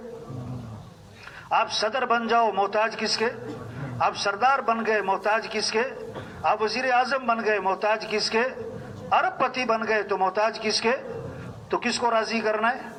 آپ صدر بن جاؤ محتاج کس کے؟ آپ سردار بن گئے محتاج کس کے؟ آپ وزیر اعظم بن گئے محتاج کس کے؟ ارب پتی بن گئے تو محتاج کس کے؟ تو کس کو راضی کرنا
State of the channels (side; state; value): both; identical; correlation 1.00